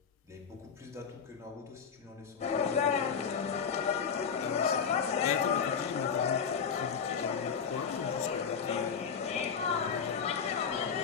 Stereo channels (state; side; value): quieter; right; 6.6 dB